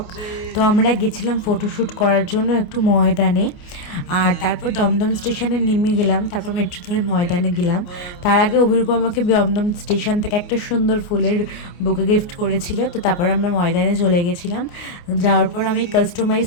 তো আমরা গেছিলাম ফটোশ্যুট করার জন্য একটু ময়দানে, আর তারপর দমদম স্টেশনে নেমে গেলাম, তারপর মেট্রো ধরে ময়দানে গেলাম। তার আগে অভিরূপ আমাকে দমদম স্টেশন থেকে একটা সুন্দর ফুলের বুকে গিফট করেছিল। তো তারপর আমরা ময়দানে চলে গেছিলাম। যাওয়ার পর আমি কাস্টমাইজ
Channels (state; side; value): late; right; 28 ms